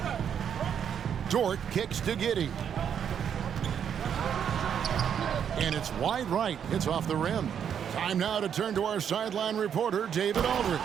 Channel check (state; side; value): quieter; left; 8.3 dB